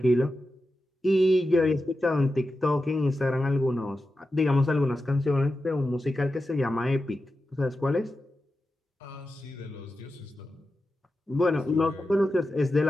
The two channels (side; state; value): both; normal; correlation 0.91